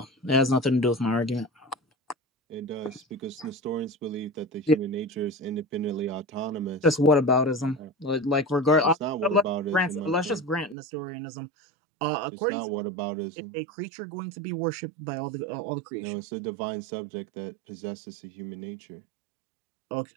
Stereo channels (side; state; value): left; drops out; at 10.8 s